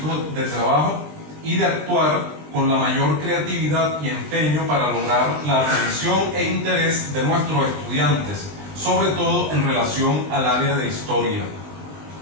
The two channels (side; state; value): left; late; 20 ms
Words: de trabajo y de actuar con la mayor creatividad y empeño para lograr la atención e interés de nuestros estudiantes, sobre todo en relación al área de historia.